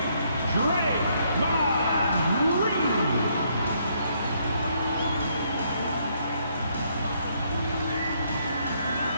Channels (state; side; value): inverted; both; correlation -0.71